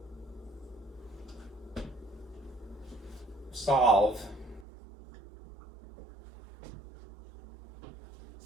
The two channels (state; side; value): drops out; left; at 4.7 s